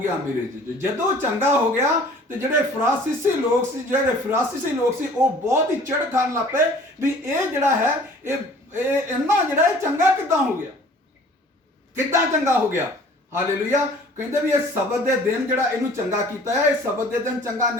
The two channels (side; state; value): both; normal; correlation 0.50